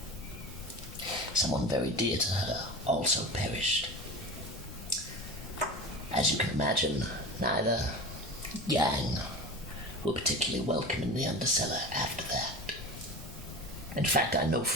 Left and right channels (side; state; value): left; noise; rumble, 14 dB below the sound